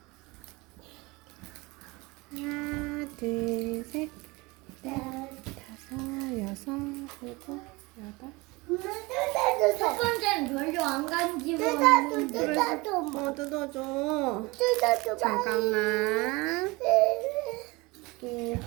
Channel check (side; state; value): left; quieter; 24.1 dB